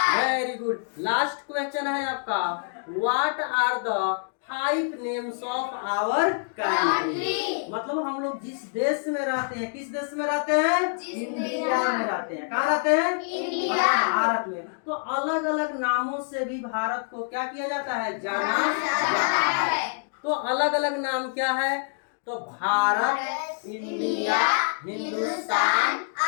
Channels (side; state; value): right; silent; digital silence